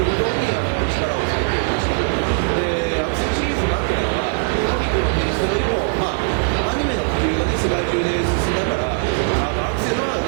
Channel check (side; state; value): left; silent; digital silence